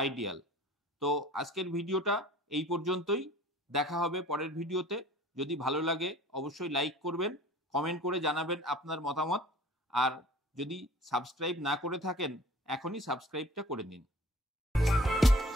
আইডিয়াল। তো আজকের ভিডিওটা এই পর্যন্তই, দেখা হবে পরের ভিডিওতে। যদি ভালো লাগে অবশ্যই লাইক করবেন, কমেন্ট করে জানাবেন আপনার মতামত, আর যদি সাবস্ক্রাইব না করে থাকেন এখনই সাবস্ক্রাইবটা করে নিন।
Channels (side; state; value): both; normal; correlation 0.48